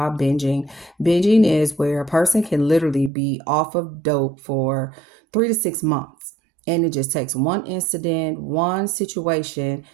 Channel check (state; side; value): drops out; left; at 3.1 s